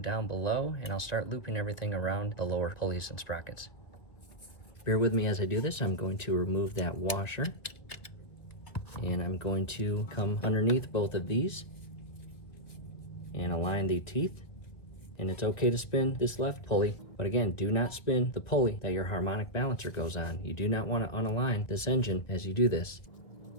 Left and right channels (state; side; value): late; right; 1.8 ms